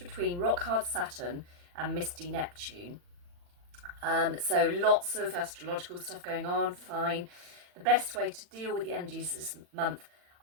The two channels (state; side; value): late; left; 40 ms